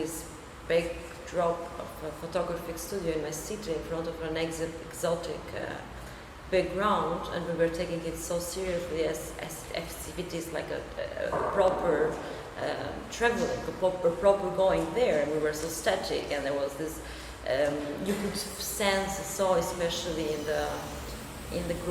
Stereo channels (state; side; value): identical; both; correlation 1.00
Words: backdrop of a photographic studio in my city, in front of an exotic background, and we were taking it so seriously as activities like a proper traveling, a proper going there, and we were so static, and there was this you could sense so, especially in the